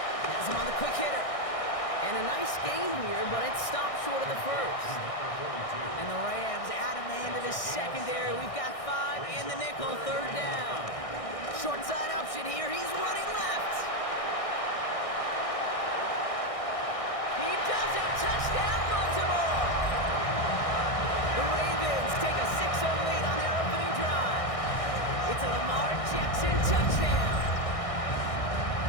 Has him on the quick hitter. And a nice gain here, but it stopped short of the first. And the Rams add a man to the secondary. We've got 5 in the nickel, 3rd down. Short side option here. He's running left. He does it. Touchdown, Baltimore. The Ravens take a 6-0 lead on their opening drive. It's a Lamar Jackson touchdown.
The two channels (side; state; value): right; late; 1.6 ms